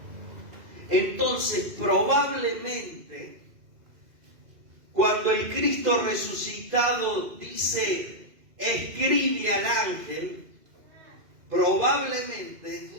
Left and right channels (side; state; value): left; late; 2.5 ms